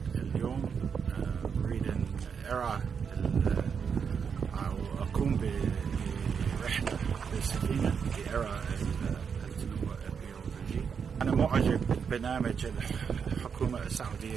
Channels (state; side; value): quieter; left; 6.5 dB